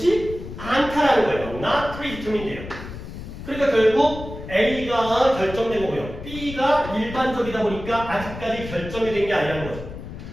않다라는 거예요. not predetermined예요. 그러니까 결국 A가 결정된 거고요. B가 일반적이다 보니까 아직까지 결정이 된 게 아니라는 거죠.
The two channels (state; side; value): noise; left; rumble, 11 dB below the sound